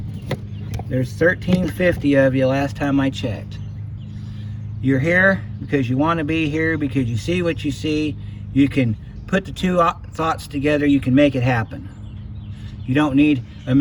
there's 1,350 of you last time I checked. You're here because you want to be here, because you see what you see. You can put the two thoughts together, you can make it happen. You don't need a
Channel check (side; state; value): both; identical; correlation 1.00